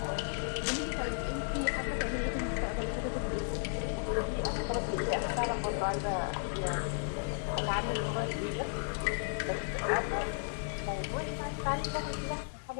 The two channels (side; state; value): right; silent; digital silence